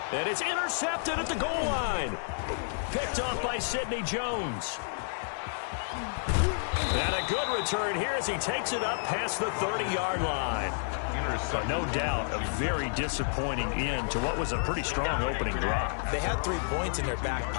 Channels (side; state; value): right; silent; digital silence